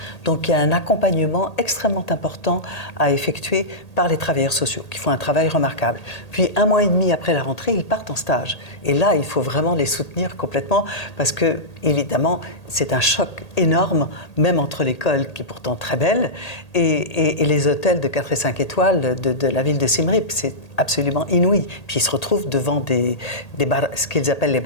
Donc il y a un accompagnement extrêmement important à effectuer par les travailleurs sociaux, qui font un travail remarquable. Puis 1 mois et demi après la rentrée, ils partent en stage. Et là, il faut vraiment les soutenir complètement, parce que, évidemment, c'est un choc énorme, même entre l'école, qui est pourtant très belle, et les hôtels de 4 et 5 étoiles de la ville de Siem Reap. C'est absolument inouï. Puis ils se retrouvent devant ce qu'ils appellent les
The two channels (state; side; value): late; right; 1.8 ms